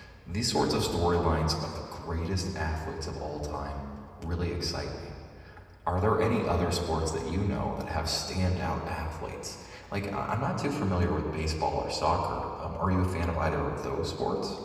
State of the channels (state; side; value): identical; both; correlation 1.00